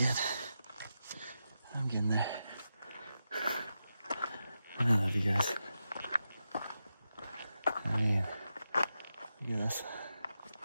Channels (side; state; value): both; inverted; correlation -0.89